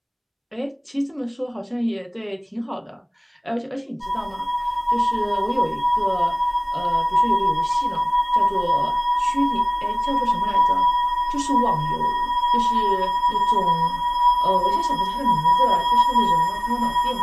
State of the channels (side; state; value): both; identical; correlation 1.00